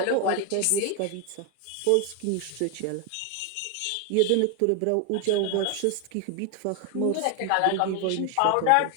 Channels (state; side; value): different; both; correlation 0.01